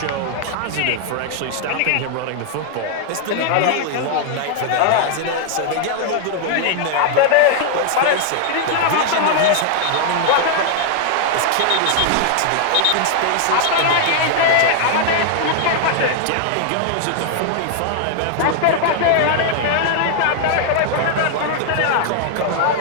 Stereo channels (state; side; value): different; both; correlation 0.00